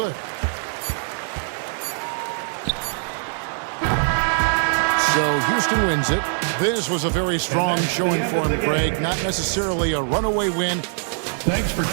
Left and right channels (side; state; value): left; silent; digital silence